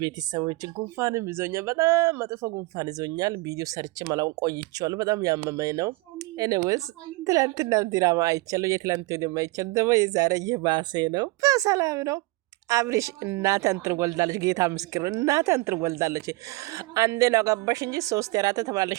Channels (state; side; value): quieter; left; 22.1 dB